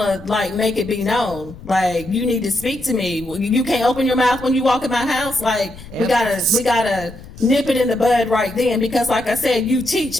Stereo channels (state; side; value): noise; left; rumble, 17 dB below the sound